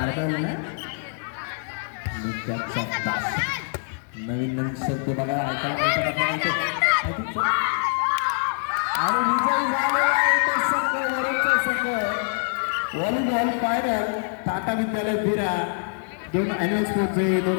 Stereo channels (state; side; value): silent; right; digital silence